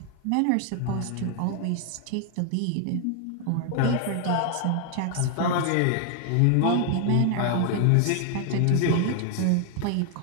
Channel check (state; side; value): different; both; correlation 0.00